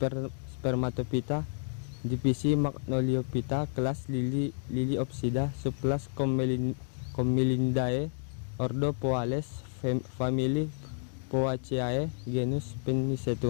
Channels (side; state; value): right; silent; digital silence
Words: Spermatophyta, divisi Magnoliophyta, kelas Liliopsida, subkelas Commelindae, ordo Poales, famili Poaceae, genus